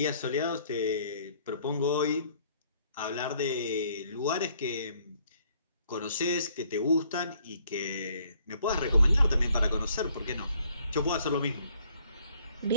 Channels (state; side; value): inverted; both; correlation -0.64